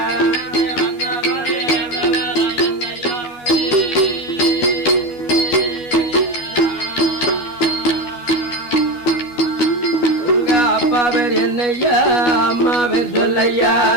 அப்பா பேர் என்னையா அம்மா பேர் சொல்லையா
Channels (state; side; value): late; right; 12 ms